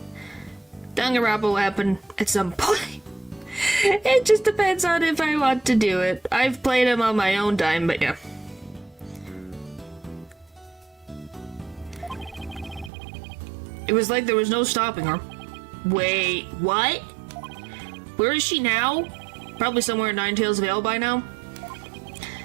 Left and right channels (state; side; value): drops out; left; at 12.9 s